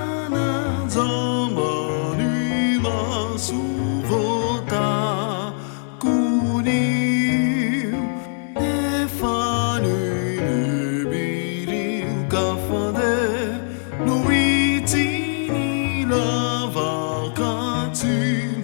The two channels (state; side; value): silent; right; digital silence